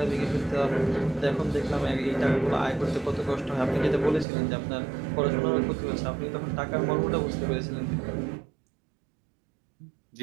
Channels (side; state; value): left; drops out; at 4.2 s